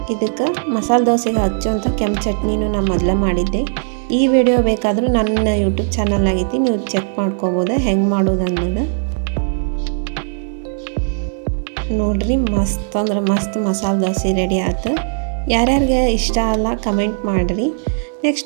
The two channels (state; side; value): silent; left; 66 dB below the other